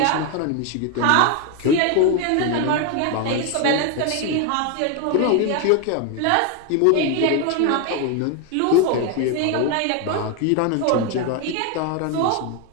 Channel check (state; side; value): different; both; correlation 0.01